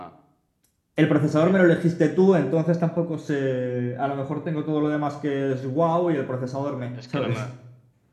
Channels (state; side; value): identical; both; correlation 1.00